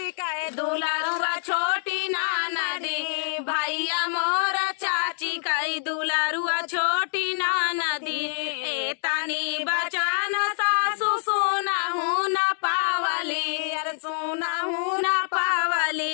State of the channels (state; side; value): silent; right; 61 dB below the other